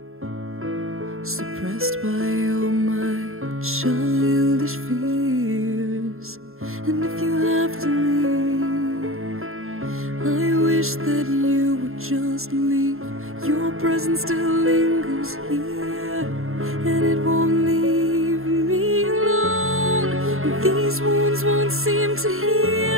suppressed by all my childish fears. And if you have to leave, I wish that you would just leave. Your presence still lingers here, and it won't leave me alone. These wounds won't seem to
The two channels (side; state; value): left; late; 0.61 ms